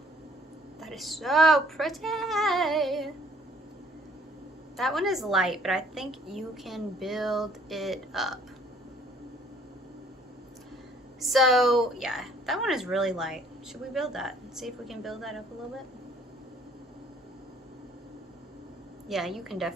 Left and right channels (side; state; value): both; normal; correlation 0.59